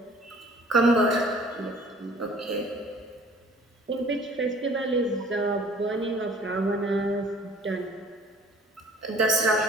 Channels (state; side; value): normal; both; correlation 0.52